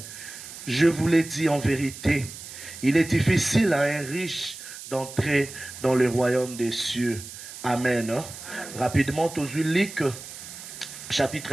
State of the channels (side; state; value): right; noise; hiss, 13 dB below the sound